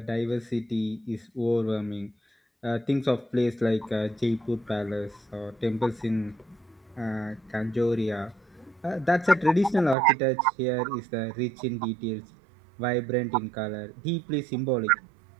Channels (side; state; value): left; drops out; at 10.0 s